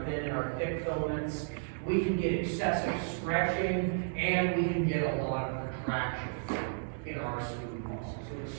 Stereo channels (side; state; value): left; silent; digital silence